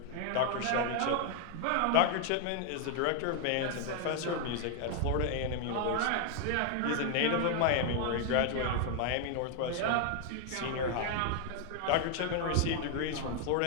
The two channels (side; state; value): both; different; correlation 0.00